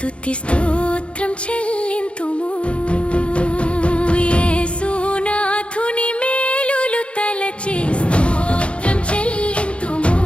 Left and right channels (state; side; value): late; right; 0.059 ms